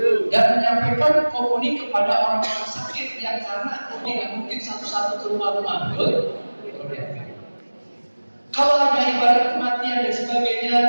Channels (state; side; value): inverted; both; correlation -1.00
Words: Dan menyampaikan komuni kepada orang-orang sakit yang karena tidak mungkin satu-satu ke rumah-rumah, betul? Kalau ada ibadat kematian dan